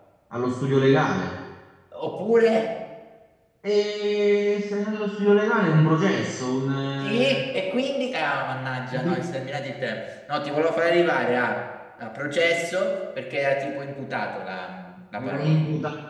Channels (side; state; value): both; identical; correlation 1.00